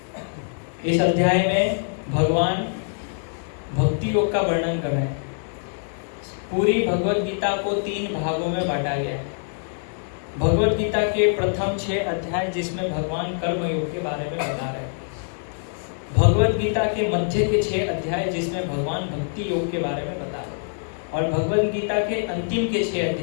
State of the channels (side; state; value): right; silent; digital silence